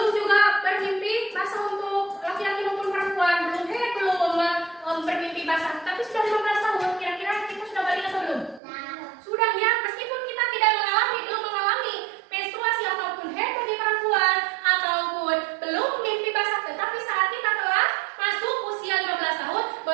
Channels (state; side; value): drops out; left; at 8.6 s